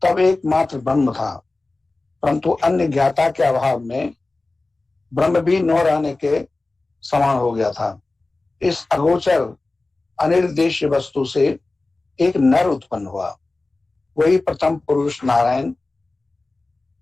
तब एकमात्र ब्रह्म था, परंतु अन्य ज्ञाता के अभाव में ब्रह्म भी न रहने के समान हो गया था। इस अगोचर अनिर्देश्य वस्तु से एक नर उत्पन्न हुआ, वही प्रथम पुरुष नारायण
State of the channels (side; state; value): right; quieter; 3.2 dB